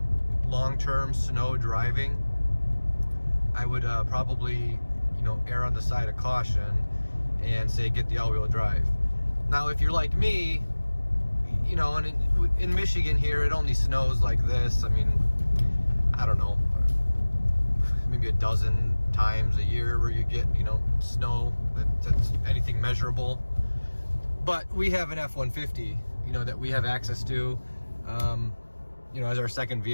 long-term snow driving, I would probably err on the side of caution and say get the all-wheel drive. Now, if you're like me, and in Michigan here, it only snows like this. I don't know, maybe a dozen times a year where you get, snow that's anything measurable. But we have an F-150, that we have access to, as our second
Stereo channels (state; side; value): inverted; both; correlation -1.00